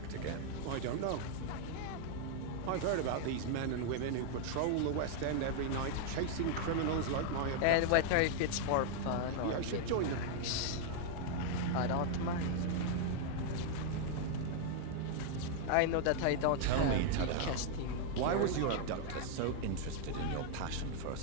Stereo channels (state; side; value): different; both; correlation 0.00